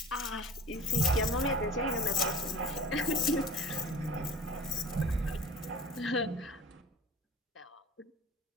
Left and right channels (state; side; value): normal; both; correlation 0.45